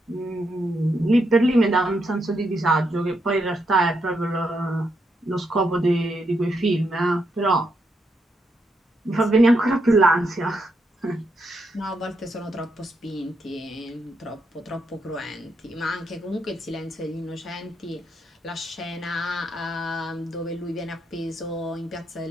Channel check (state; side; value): normal; both; correlation 0.80